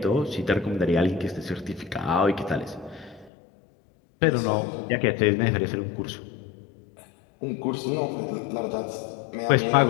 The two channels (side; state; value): right; drops out; at 3.3 s